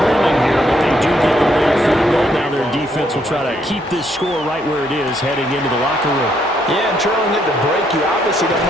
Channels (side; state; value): both; normal; correlation 0.72